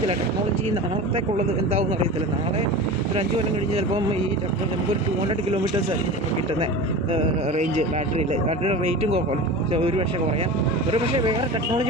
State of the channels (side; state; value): both; normal; correlation 0.31